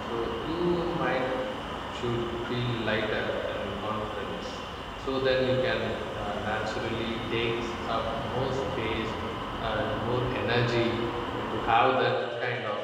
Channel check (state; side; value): identical; both; correlation 1.00